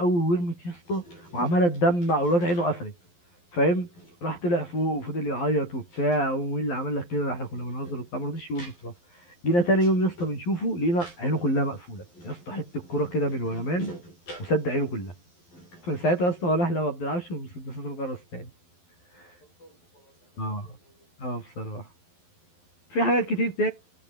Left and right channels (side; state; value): right; late; 11 ms